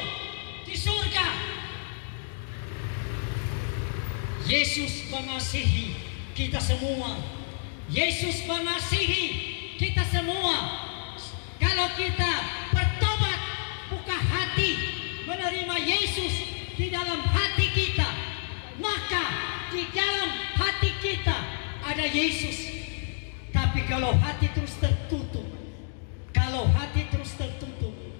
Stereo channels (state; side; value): silent; right; digital silence